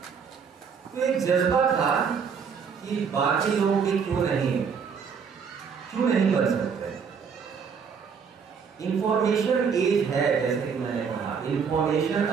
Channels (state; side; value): quieter; left; 6.3 dB